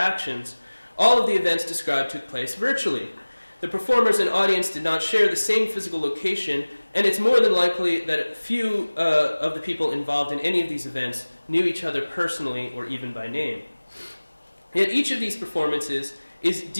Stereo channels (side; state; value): both; inverted; correlation -1.00